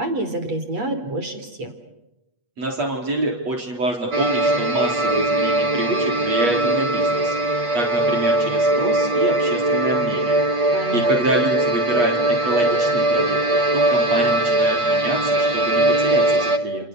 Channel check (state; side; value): late; left; 8.3 ms